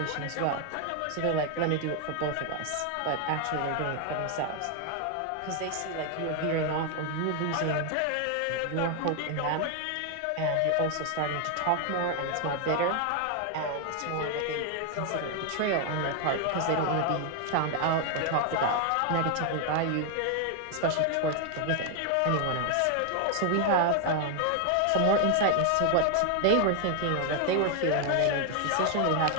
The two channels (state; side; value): different; both; correlation 0.00